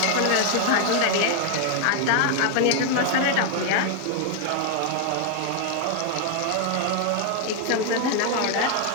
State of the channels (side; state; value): both; different; correlation 0.00